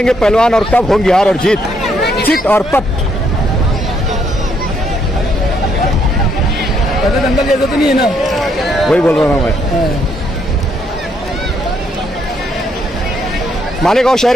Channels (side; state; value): both; normal; correlation 0.72